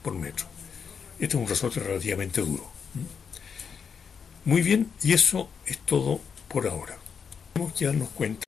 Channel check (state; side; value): quieter; right; 6.5 dB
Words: por metro. Este es un resorte relativamente duro. Muy bien, y eso es todo por ahora. Tenemos que darnos cuenta